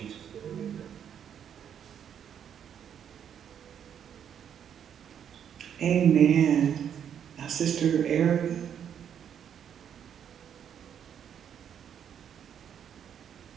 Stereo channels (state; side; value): quieter; left; 8.7 dB